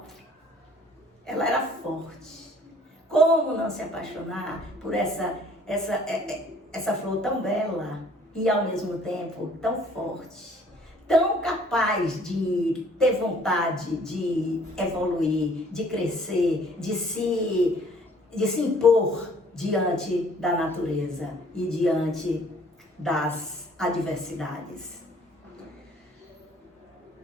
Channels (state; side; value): normal; both; correlation 0.57